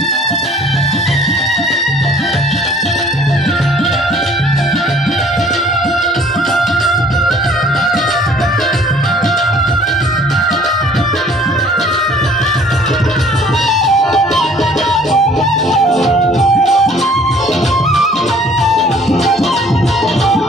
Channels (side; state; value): both; normal; correlation 0.55